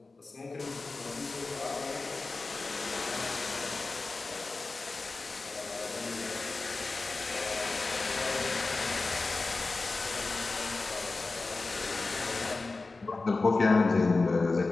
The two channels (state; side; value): quieter; right; 3.7 dB